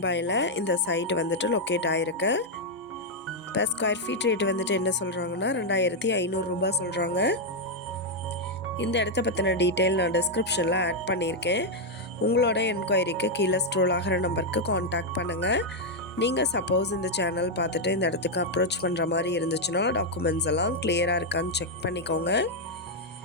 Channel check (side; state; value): both; normal; correlation -0.01